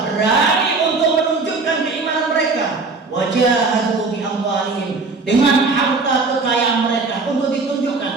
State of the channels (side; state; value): left; quieter; 4.0 dB